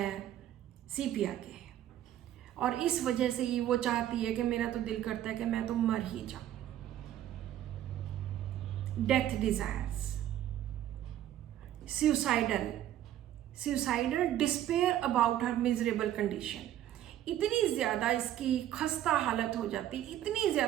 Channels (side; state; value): left; quieter; 12.1 dB